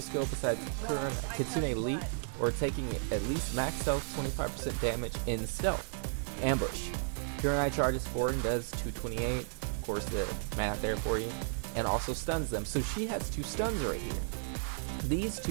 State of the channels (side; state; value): left; silent; digital silence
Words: skill besides Kitsune Leap, or taking at least max health 25% damage in stealth. Ambush. Kurenai charges forward and does 228, of course the math there for you, and also stuns them. So she has 2 stuns right here. These